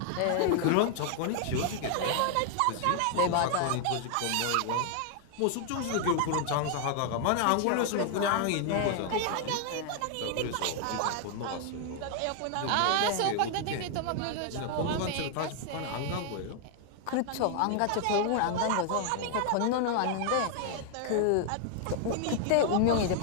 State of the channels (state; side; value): different; both; correlation 0.00